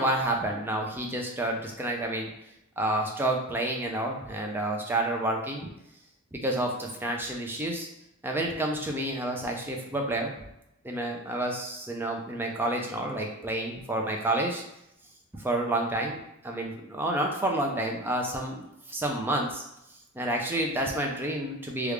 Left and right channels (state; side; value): normal; both; correlation 0.29